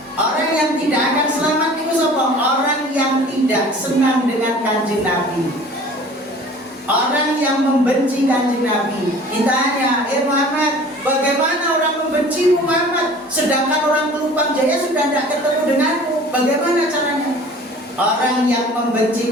orang yang tidak akan selamat itu siapa? Orang yang tidak senang dengan Kanjeng Nabi. Orang yang membenci Kanjeng Nabi. Ditanya, Muhammad, bagaimana orang membenci Muhammad sedangkan orang Pelumpang Jaya sudah tidak ketemu denganmu? Bagaimana caranya? Orang yang membenci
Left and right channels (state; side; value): normal; both; correlation 0.46